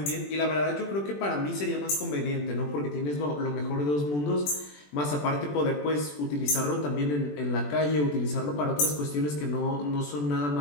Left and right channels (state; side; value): late; right; 21 ms